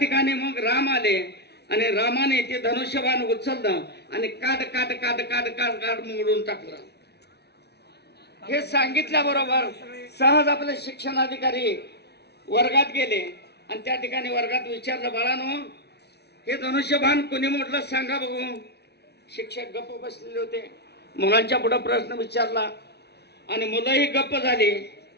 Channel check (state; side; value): late; right; 0.49 ms